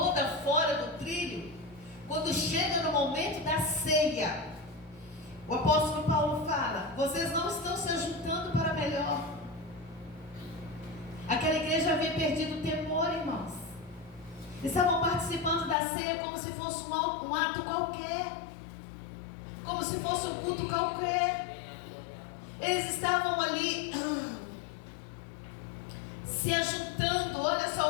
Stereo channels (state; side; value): drops out; right; at 15.8 s